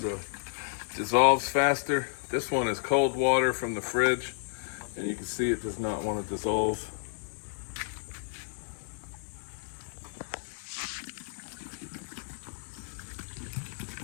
dissolves faster. This one is cold water from the fridge, and you can see it does not want to dissolve.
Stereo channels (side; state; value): right; silent; 57 dB below the other